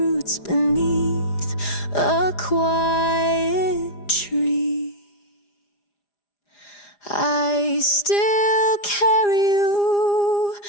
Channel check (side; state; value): right; late; 4.9 ms